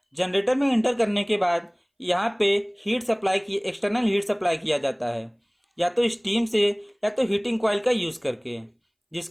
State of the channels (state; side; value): identical; both; correlation 1.00